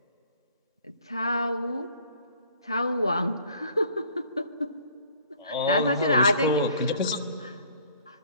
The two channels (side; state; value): both; inverted; correlation -0.55